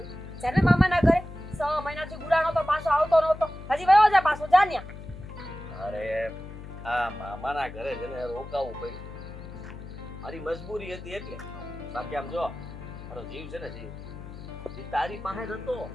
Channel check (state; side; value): noise; left; hum, 12 dB below the sound